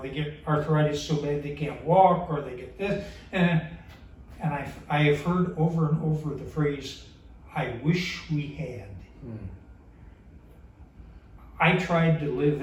get arthritis so bad they can't walk, or they get this, and I have heard over and over the phrase, "I wish we had." I tried to live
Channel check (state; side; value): identical; both; correlation 1.00